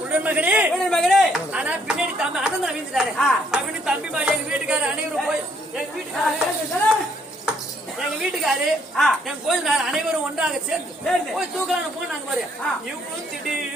ஆனா பின்னாடி தம்பி அண்ணன் வீழ்ந்துட்டாரு அப்படின்னு தம்பி மாதிரி எங்க வீட்டுக்காரர் அனைவரும் போய் எங்க வீட்டுக்காரு என் கோயில் அனைவரும் ஒன்றாக சேர்ந்து போய் தூக்கலான்னு போனாங்க பாரு. இவங்களும்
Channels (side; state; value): both; normal; correlation 0.67